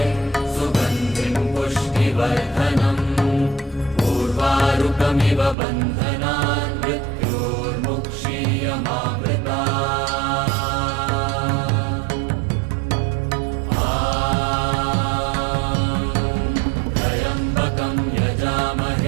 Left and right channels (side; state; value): left; drops out; at 5.6 s